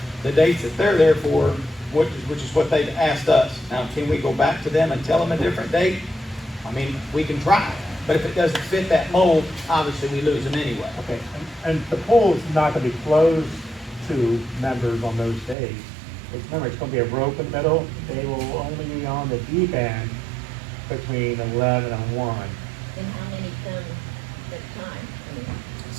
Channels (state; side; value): drops out; left; at 15.6 s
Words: the dates that they're there for, which is what they've asked us. Now, can we go back to them and tell them a different date? I mean, we can try, but if it doesn't fit that mold, obviously we lose them anyway. Okay, and the pool is not gonna be closed to members on those days. Remember, it's gonna be a rope in the middle. They will only be on the deep end between 11 and 1. And how many come at a time? I mean,